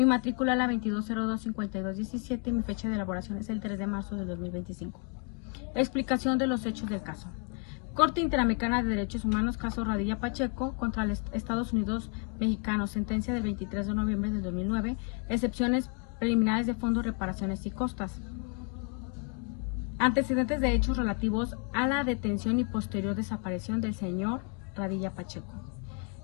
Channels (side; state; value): right; quieter; 36.0 dB